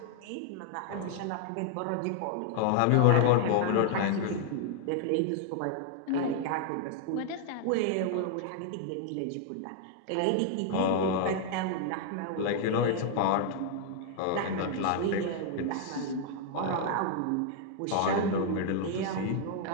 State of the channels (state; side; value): different; both; correlation 0.00